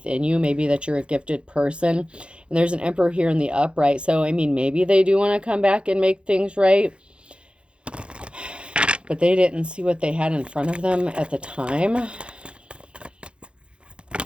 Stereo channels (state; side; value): late; left; 0.057 ms